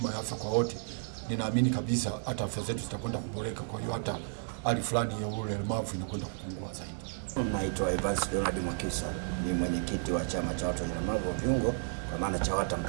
ya afya kwa wote, ninaamini kabisa hata afya zetu zitakwenda kuboreka. Kwa hiyo hata hali fulani ya ulemavu inakwenda kupungua zaidi. Naitwa Evans Donald Mwakisa, ni mwenyekiti wa chama cha watu wenye ulemavu wa viungo kwa maana CHAWATA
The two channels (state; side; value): silent; left; digital silence